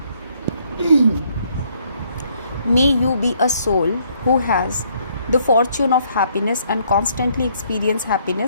May you be a soul who has the fortune of happiness and constantly experience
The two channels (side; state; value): both; inverted; correlation -0.67